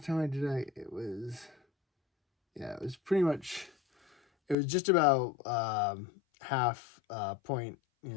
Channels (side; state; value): right; drops out; at 4.5 s